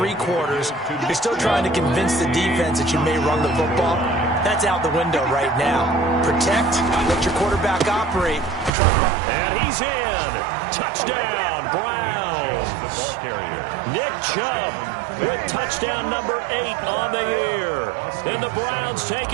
quarters, you're still trying to convince the defense that you may run the football. That's out the window right now. Protect, let your quarterback operate. And he's in. Touchdown, Browns. Nick Chubb with touchdown number 8 on the year. And the Browns take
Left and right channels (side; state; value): left; drops out; at 8.7 s